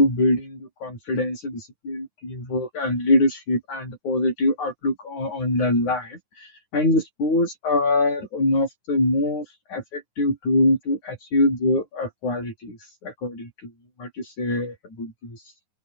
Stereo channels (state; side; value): late; right; 9.5 ms